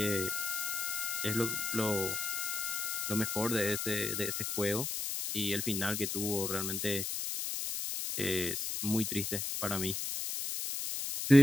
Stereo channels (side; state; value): left; noise; hiss, 2 dB below the sound